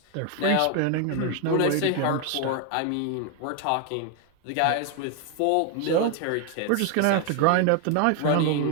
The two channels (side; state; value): both; different; correlation 0.00